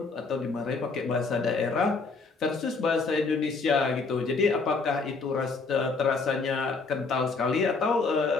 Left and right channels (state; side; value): quieter; right; 4.2 dB